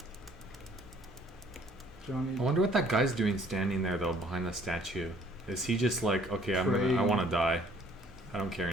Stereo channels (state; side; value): normal; both; correlation 0.59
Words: Johnny, I wonder what that guy's doing standing there though behind the statue. Is he just like, okay, I Praying. want to die. I don't care